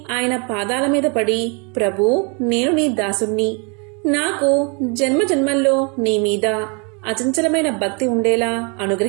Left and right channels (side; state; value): left; quieter; 33.7 dB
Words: ఆయన పాదాల మీద పడి, ప్రభూ, నేను నీ దాసుణ్ణి. నాకు జన్మజన్మల్లో నీ మీద అచంచలమైన భక్తి ఉండేలా